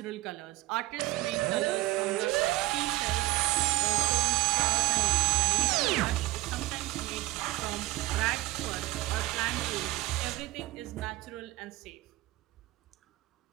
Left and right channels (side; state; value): left; quieter; 18.5 dB